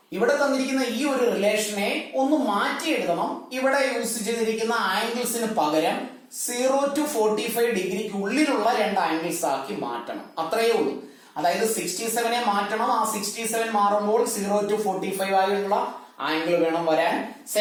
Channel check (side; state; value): both; identical; correlation 1.00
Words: ഇവിടെ തന്നിരിക്കുന്ന ഈ ഒരു റിലേഷനെ ഒന്ന് മാറ്റി എഴുതണം. ഇവിടെ യൂസ് ചെയ്തിരിക്കുന്ന ആംഗിൾസിന് പകരം 0 to 45 ഡിഗ്രിക്ക് ഉള്ളിലുള്ള രണ്ട് ആംഗിൾസ് ആക്കി മാറ്റണം. അത്രയേ ഉള്ളൂ. അതായത് 67 മാറ്റണം. ആ 67 മാറുമ്പോൾ 0 to 45 ആയുള്ള ആംഗിൾ വേണം വരാൻ.